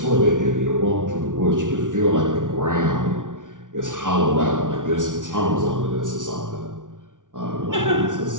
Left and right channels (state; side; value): late; left; 0.88 ms